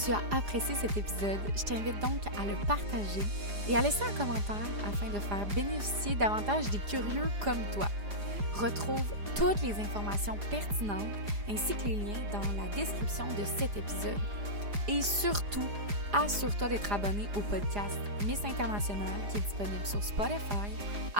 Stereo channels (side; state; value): left; late; 4.9 ms